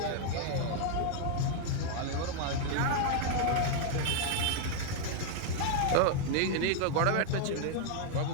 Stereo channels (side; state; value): both; different; correlation 0.00